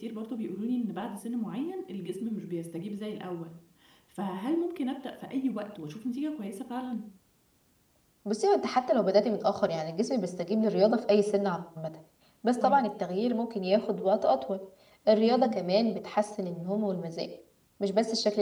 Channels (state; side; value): identical; both; correlation 1.00